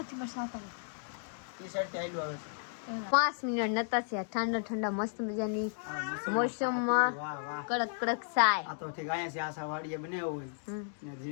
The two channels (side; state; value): right; silent; digital silence